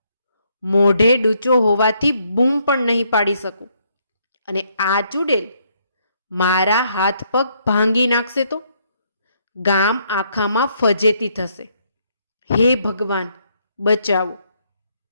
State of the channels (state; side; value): inverted; both; correlation -0.72